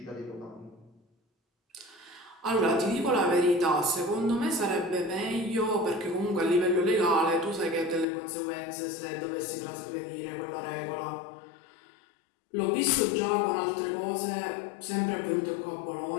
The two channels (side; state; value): right; drops out; at 8.1 s